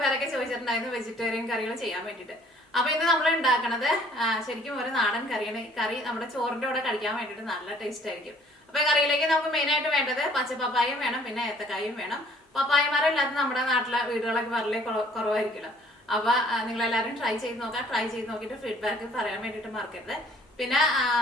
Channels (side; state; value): both; normal; correlation 0.58